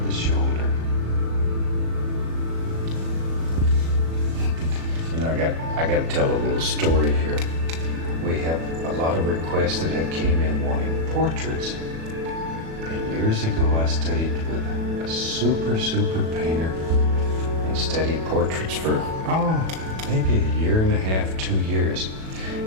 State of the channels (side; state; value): left; late; 37 ms